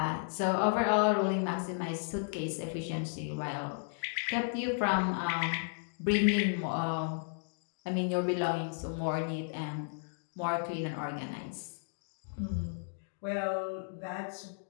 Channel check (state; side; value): silent; right; digital silence